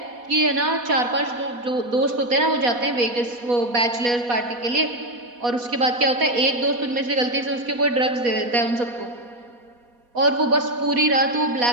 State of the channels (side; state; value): left; late; 4.2 ms